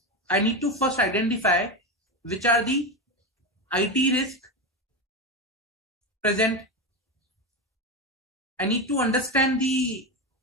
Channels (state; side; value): normal; both; correlation 0.16